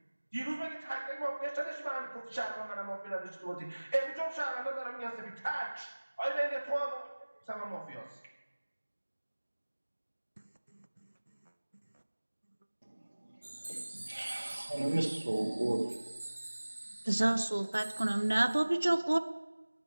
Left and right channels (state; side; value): inverted; both; correlation -1.00